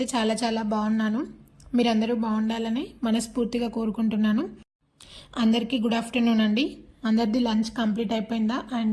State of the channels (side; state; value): both; identical; correlation 1.00